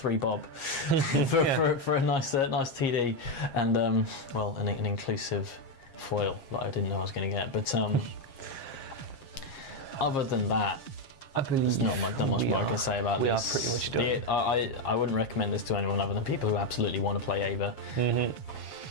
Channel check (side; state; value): right; late; 7.4 ms